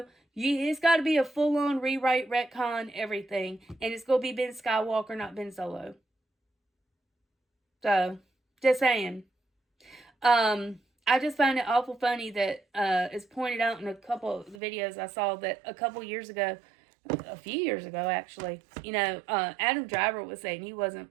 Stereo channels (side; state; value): left; drops out; at 14.6 s